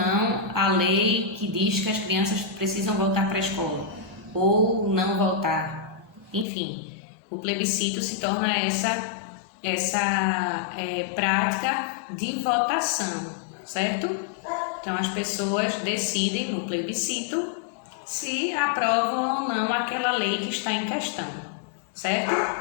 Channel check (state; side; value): drops out; right; at 6.5 s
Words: a lei que diz que as crianças precisam voltar para a escola ou não voltar. Enfim, o plebiscito se torna essa prática de votação, certo? Então as pessoas decidem no plebiscito se aprovam ou não aquela lei que está em questão, certo?